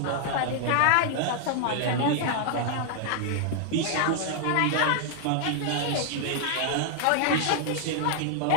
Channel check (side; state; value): both; different; correlation 0.00